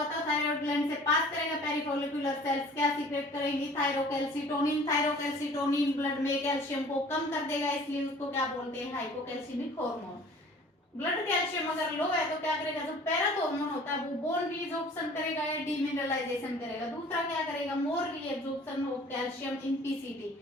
तो थायराइड ग्लैंड से पास करेगा, पेरिफोलिकुलर सेल्स क्या सीक्रेट करेंगी, थायरोकैल्सिटोनिन, थायरोकैल्सिटोनिन ब्लड में कैल्शियम को कम कर देगा, इसलिए उसको क्या बोलते हैं, हाइपोकैल्शियमिक हार्मोन। ब्लड कैल्शियम अगर लो है तो क्या करेगा, जो पैराथॉर्मोन होता है वो बोन रीजॉर्प्शन करेगा या डीमिनरलाइजेशन करेगा। दूसरा क्या करेगा, more reabsorption of calcium in PCT,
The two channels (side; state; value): both; normal; correlation 0.49